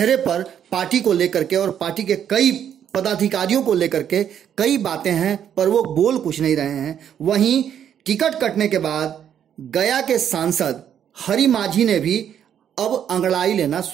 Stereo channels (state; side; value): quieter; left; 9.2 dB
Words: पर पार्टी को लेकर के और पार्टी के कई पदाधिकारियों को लेकर के कई बातें हैं, पर वो बोल कुछ नहीं रहे हैं। वहीं टिकट कटने के बाद गया के सांसद हरि माझी ने भी अब अंगड़ाई लेना